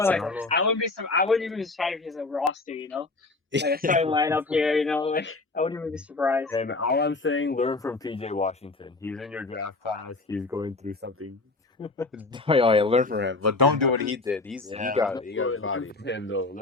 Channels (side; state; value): right; quieter; 3.4 dB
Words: even be surprised if he's a roster. Like a starting lineup here. Like I wouldn't even be surprised. And all I'm saying, learn from PJ Washington. He's in your draft class. He's going through something. Oh yeah, learn from him, but don't do what he did. He got learn bodied. from him though.